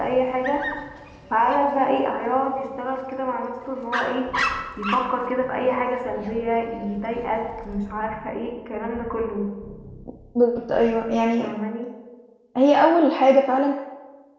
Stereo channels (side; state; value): both; identical; correlation 1.00